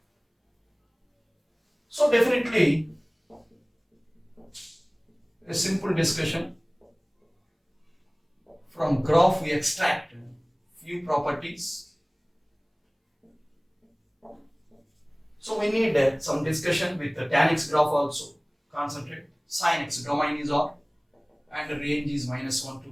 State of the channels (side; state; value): both; identical; correlation 1.00